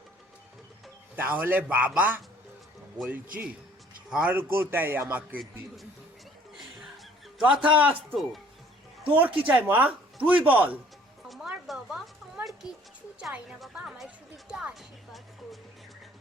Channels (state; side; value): normal; both; correlation 0.56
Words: তাহলে বাবা বলছি স্বর্গটাই আমাকে দিন। তথাস্তু। তোর কি চাই মা, তুই বল। আমার বাবা, আমার কিচ্ছু চাই না বাবা, আমার শুধু একটু আশীর্বাদ করুন।